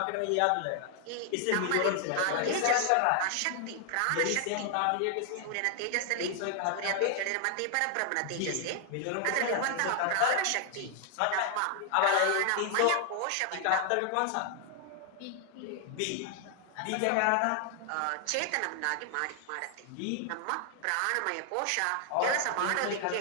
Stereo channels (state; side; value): different; both; correlation 0.00